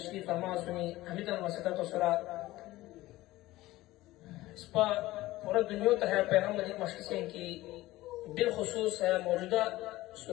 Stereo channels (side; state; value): right; quieter; 17.5 dB